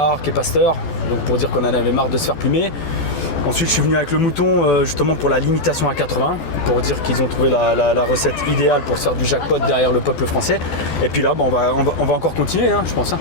qui est Pasteur, donc pour dire qu'on en avait marre de se faire plumer. Ensuite, je suis venu avec le mouton justement pour la limitation à 80, pour dire qu'ils ont trouvé la recette idéale pour se faire du jackpot derrière le peuple français. Et puis là, on va encore continuer, hein, je pense. Hein.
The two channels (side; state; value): right; late; 14 ms